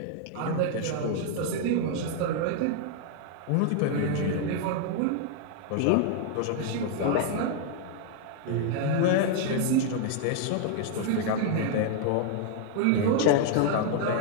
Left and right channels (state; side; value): different; both; correlation 0.00